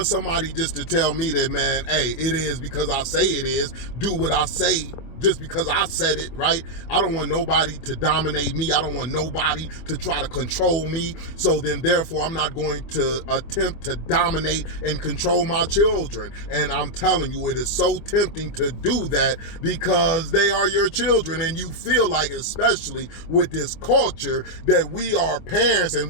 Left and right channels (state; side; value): late; right; 25 ms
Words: somebody just to tell me that, man, hey, it is because I say it is, do what I say just because I said it, right? I don't want nobody to dominate me. I don't want nobody to try to control me. So then therefore, I'm not going to attempt to dominate and control my children. And I'm telling you, it is so tempting to do that because they are your children, and you feel like, especially with this culture, that we are parents and